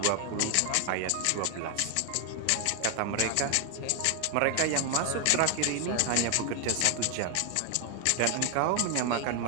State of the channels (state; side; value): different; both; correlation 0.01